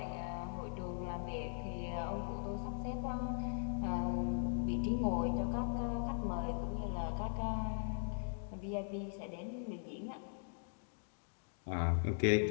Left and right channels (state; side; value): silent; right; digital silence